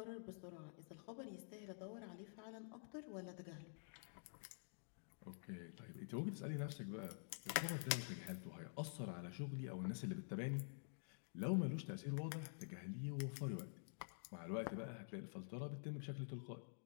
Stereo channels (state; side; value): silent; right; digital silence